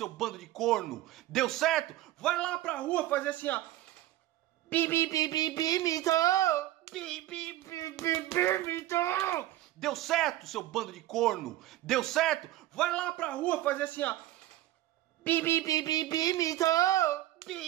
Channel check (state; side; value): quieter; left; 15.0 dB